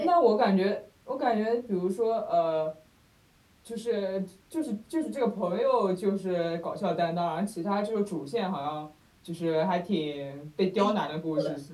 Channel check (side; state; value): both; identical; correlation 1.00